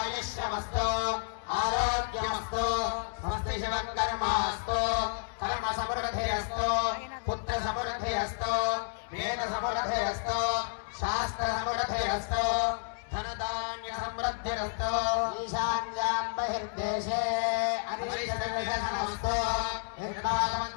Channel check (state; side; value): silent; right; 57 dB below the other